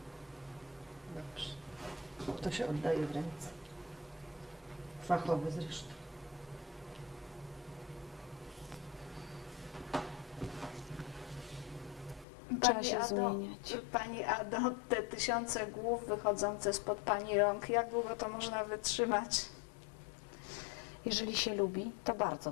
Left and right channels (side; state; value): right; drops out; at 12.2 s